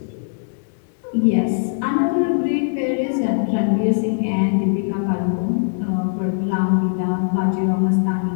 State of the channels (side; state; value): right; silent; digital silence